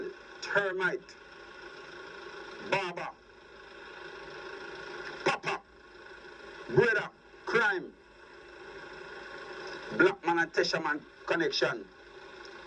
Termite, Baba, Papa, Brother, Crime, Black Man and Tesha Man connection,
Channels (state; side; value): identical; both; correlation 1.00